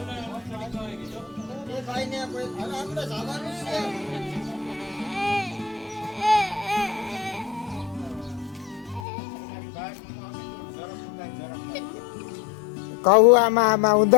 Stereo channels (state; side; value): drops out; right; at 9.1 s